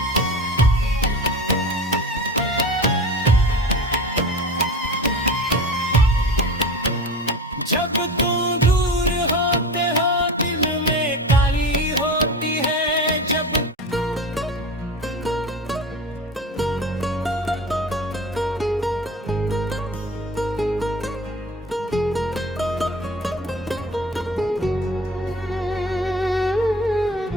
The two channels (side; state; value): both; normal; correlation 0.33